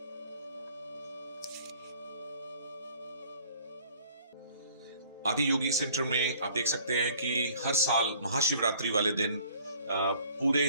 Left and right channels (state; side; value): inverted; both; correlation -0.56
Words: आदि योगी सेंटर में आप देख सकते हैं कि हर साल महाशिवरात्रि वाले दिन पूरे